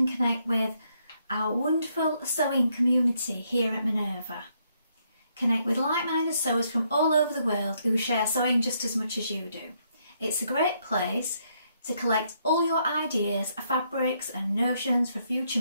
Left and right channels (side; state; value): both; inverted; correlation -0.74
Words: connect with our wonderful sewing community here at Minerva. Connect with like-minded sewers from all over the world who share sewing just as much as you do. It's a great place to collect all your ideas, fabrics and notions for future